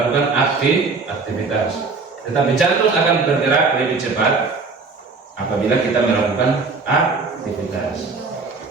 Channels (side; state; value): left; quieter; 4.3 dB